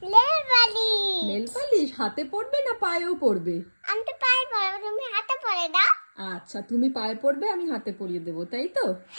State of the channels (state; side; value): inverted; both; correlation -1.00